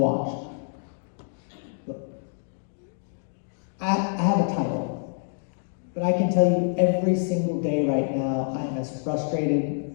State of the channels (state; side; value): silent; right; digital silence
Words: Look, I have a title, but I can tell you every single day right now, I am as frustrated